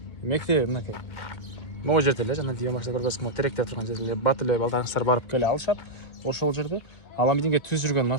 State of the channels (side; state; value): right; late; 2.2 ms